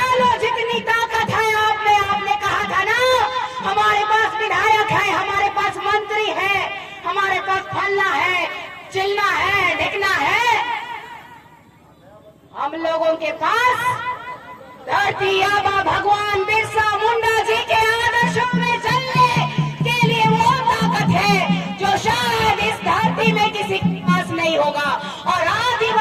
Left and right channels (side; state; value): both; identical; correlation 1.00